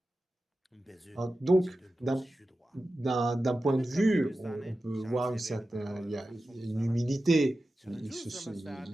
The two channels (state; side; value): normal; both; correlation 0.93